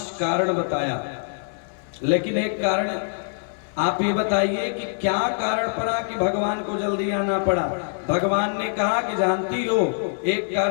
कारण बताया, लेकिन एक कारण आप ये बताइए कि क्या कारण पड़ा कि भगवान को जल्दी आना पड़ा। भगवान ने कहा कि जानती हो, एक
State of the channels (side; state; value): right; silent; digital silence